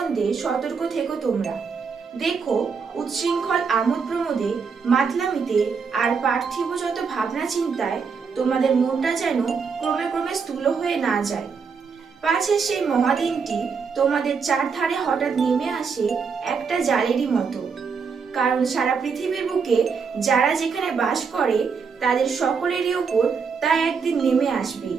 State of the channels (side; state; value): left; quieter; 5.6 dB